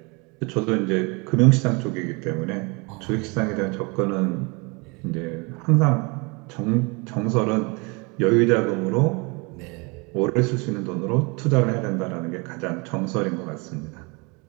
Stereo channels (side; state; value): left; quieter; 29.3 dB